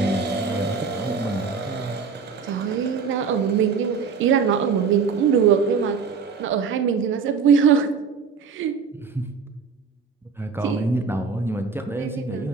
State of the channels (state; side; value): quieter; left; 5.7 dB